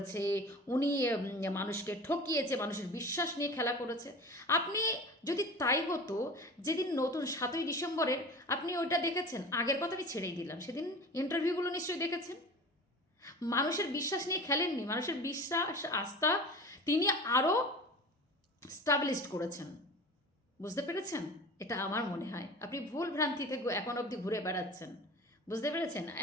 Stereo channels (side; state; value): both; normal; correlation 0.36